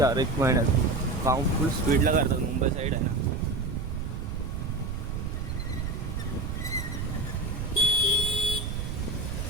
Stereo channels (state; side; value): noise; right; rumble, 4 dB below the sound